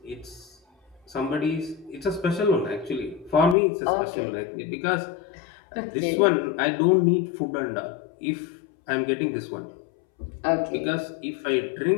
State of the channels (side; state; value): right; drops out; at 3.6 s